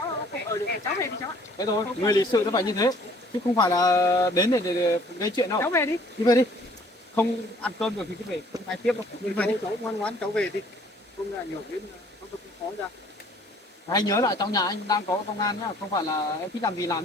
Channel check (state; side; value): normal; both; correlation 0.57